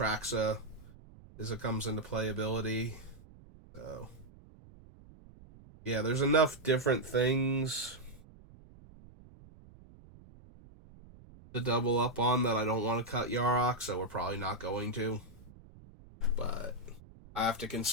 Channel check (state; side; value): noise; right; rumble, 21 dB below the sound